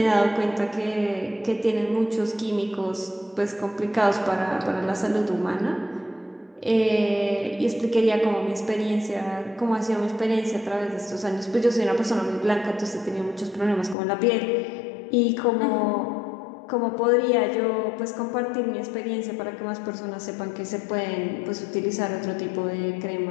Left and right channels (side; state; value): right; drops out; at 14.0 s